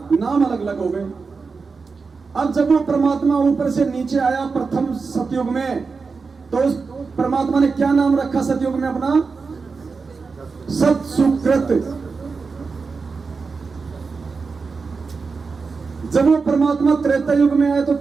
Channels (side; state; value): left; quieter; 4.7 dB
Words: नाम अलग अलग हो गए। अब जब वो परमात्मा ऊपर से नीचे आया प्रथम सतयुग में, तो उस परमात्मा ने क्या नाम रखा सतयुग में अपना? सत सुकृत। जब वो परमात्मा त्रेता युग में आया तो